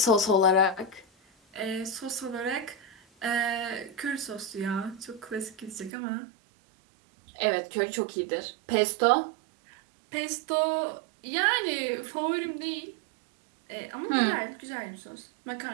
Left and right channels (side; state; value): left; drops out; at 5.9 s